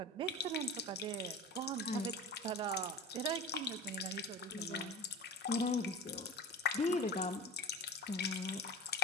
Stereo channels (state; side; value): normal; both; correlation 0.34